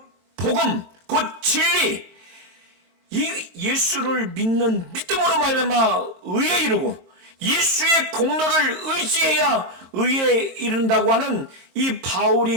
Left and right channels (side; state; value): left; late; 22 ms